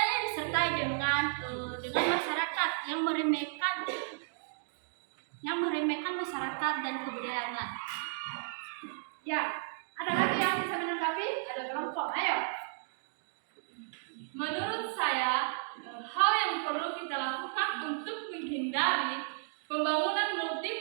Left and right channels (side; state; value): left; silent; digital silence